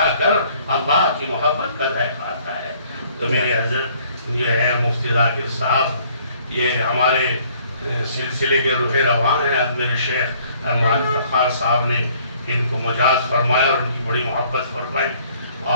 کر اللہ کی محبت کا ذائقہ آتا ہے۔ تو میرے حضرت یہ ہے مفتی ذاکر صاحب، یہ ہمارے سلسلے کے روح رواں ہیں۔ میرے شیخ المراد فخار صاحب نے ان کو مجاز فرمایا اور ان کی بڑی محبت فرمائی،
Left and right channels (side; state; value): both; inverted; correlation -0.60